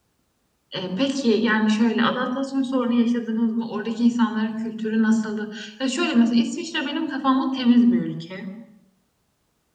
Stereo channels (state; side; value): identical; both; correlation 1.00